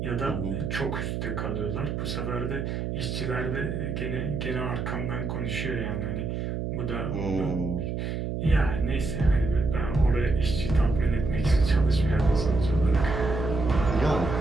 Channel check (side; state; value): right; noise; hum, 3 dB below the sound